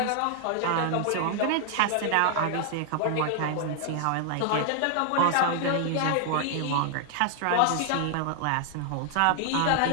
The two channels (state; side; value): different; both; correlation 0.00